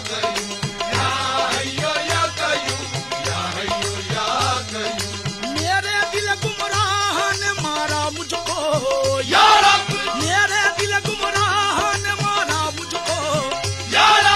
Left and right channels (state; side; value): identical; both; correlation 1.00